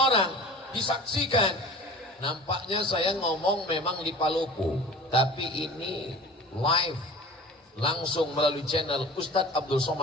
disaksikan. Nampaknya saya ngomong memang di Palopo, tapi ini live, langsung melalui channel Ustadz Abdul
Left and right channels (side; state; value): both; normal; correlation 0.41